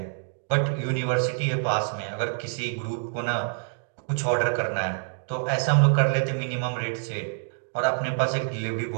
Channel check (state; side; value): silent; left; digital silence